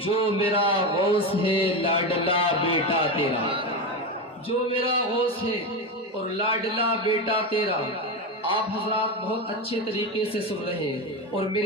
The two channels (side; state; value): both; normal; correlation 0.16